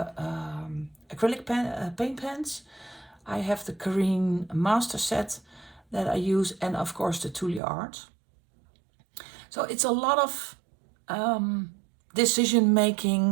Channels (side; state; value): left; drops out; at 7.6 s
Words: acrylic paint pens. I have the Karine Master Set that I use, and of course the Tulle Art. So it's a lot of decision